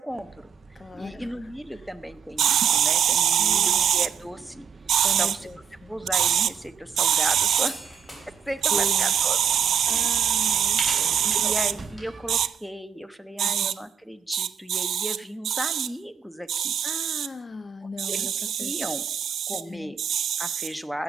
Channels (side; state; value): left; quieter; 7.4 dB